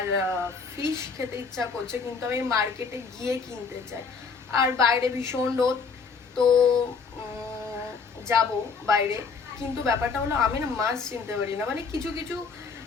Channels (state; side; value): quieter; right; 5.2 dB